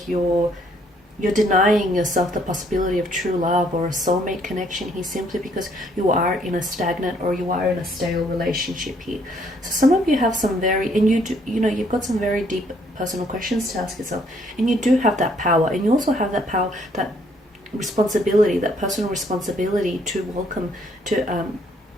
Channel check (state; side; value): normal; both; correlation 0.66